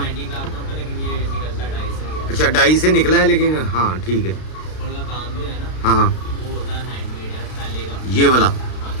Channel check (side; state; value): right; late; 32 ms